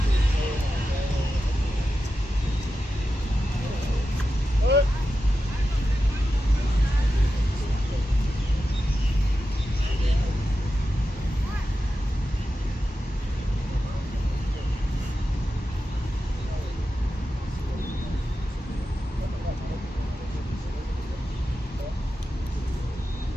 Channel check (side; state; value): both; normal; correlation 0.91